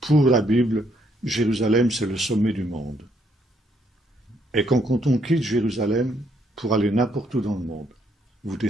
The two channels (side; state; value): both; normal; correlation 0.71